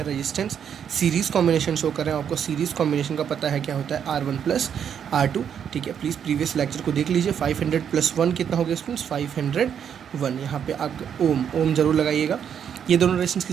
रेजिस्टेंस सीरीज़ कॉम्बिनेशन शो कर रहे हैं। आपको सीरीज़ कॉम्बिनेशन का पता है क्या होता है, R1 + R2। ठीक है, प्लीज़ प्रीवियस लेक्चर को देख लीजिए। 500 + 1 कितना हो गया स्टूडेंट्स, 501। यहाँ पे आप ओम जरूर लगाइएगा। ये दोनों रेजिस्टेंस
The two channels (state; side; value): quieter; left; 8.3 dB